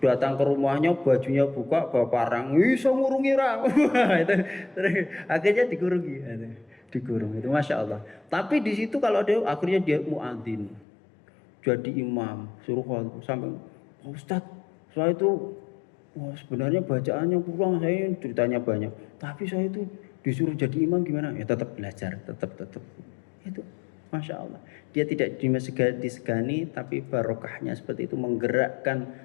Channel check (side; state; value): right; drops out; at 10.9 s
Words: datang ke rumahnya, bajunya buka, bawa parang, iso ngurungi ra. Itu akhirnya dikurungi. Dikurung itu, masya Allah. Tapi di situ kalau dia akhirnya dia muadzin. jadi imam, suruh sampai Ustadz, saya itu sebenarnya bacaannya kurang, saya ceritanya banyak, tapi saya itu disuruh jadi imam gimana? Ya tetap belajar, tetap itu, masya Allah. Dia tidak disegani, tapi barokahnya seperti itu